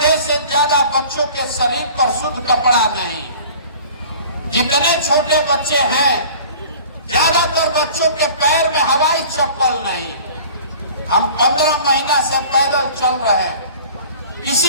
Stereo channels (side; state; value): both; inverted; correlation -0.45